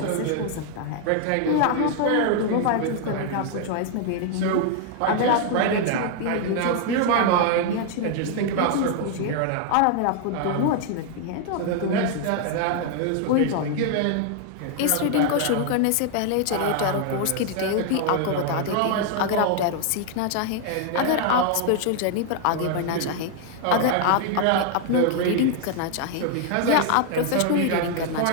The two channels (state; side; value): different; both; correlation 0.00